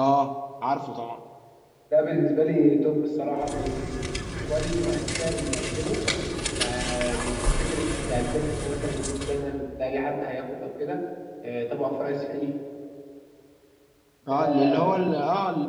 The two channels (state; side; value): identical; both; correlation 1.00